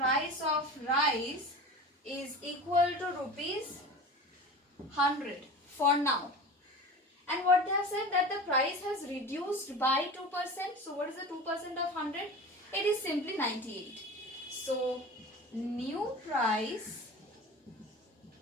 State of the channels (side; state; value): both; normal; correlation 0.34